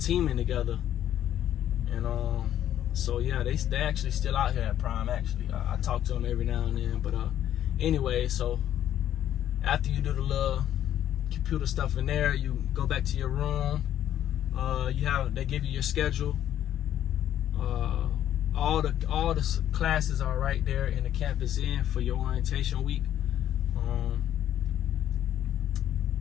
together. And so yeah, they actually still out here at Prime. Actually, I talk to them every now and then. But anyway, so after you do the little computer stuff in there, you go back to your room. They give you your schedule. All the classes are right there in the campus inn for your orientation week.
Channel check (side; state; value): right; quieter; 11.2 dB